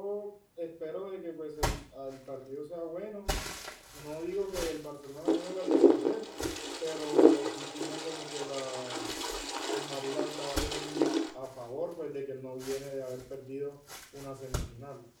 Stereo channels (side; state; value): both; identical; correlation 1.00